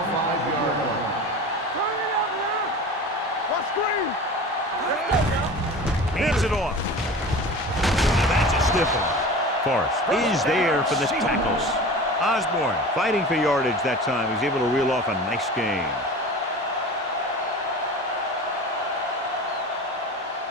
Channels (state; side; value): normal; both; correlation 0.35